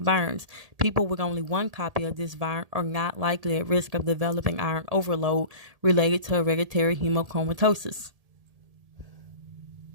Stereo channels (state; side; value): late; left; 1.8 ms